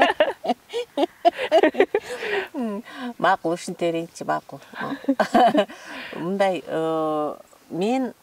Макул, ушинте берейинчи, макул. Мындай, мен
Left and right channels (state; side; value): identical; both; correlation 1.00